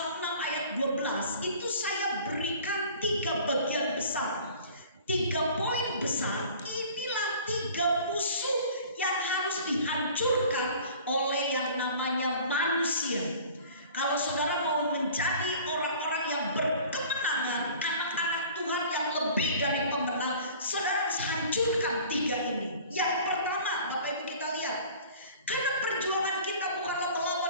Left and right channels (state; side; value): inverted; both; correlation -0.46